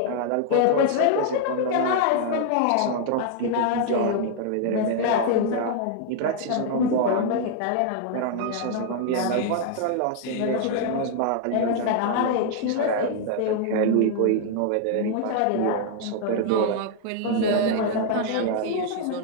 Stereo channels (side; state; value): both; different; correlation 0.00